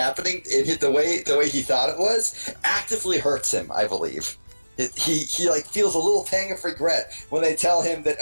in the way he thought it was actively hurts him, I believe. He like feels a little pang of regret when they tell him that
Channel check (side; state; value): both; inverted; correlation -1.00